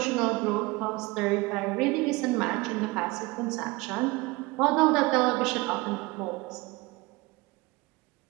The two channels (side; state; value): left; quieter; 22.9 dB